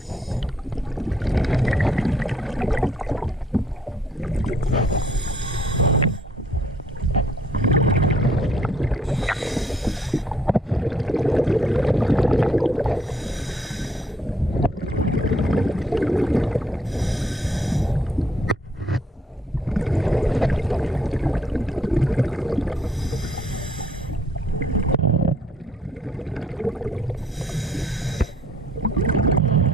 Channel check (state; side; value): normal; both; correlation 0.65